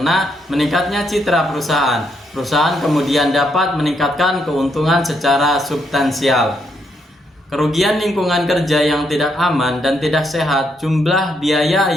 meningkatnya citra perusahaan. Perusahaan kemudian dapat meningkatkan keuntungan secara substansial. Kerugian lingkungan kerja yang tidak aman dan tidak sehat. Jumlah biaya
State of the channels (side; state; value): both; normal; correlation 0.77